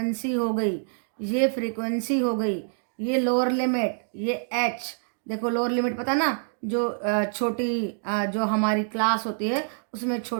हो गई, ये फ्रीक्वेंसी हो गई, ये लोअर लिमिट, ये h। देखो लोअर लिमिट पता ना, जो छोटी जो हमारी क्लास होती है उसमें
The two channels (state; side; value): silent; left; digital silence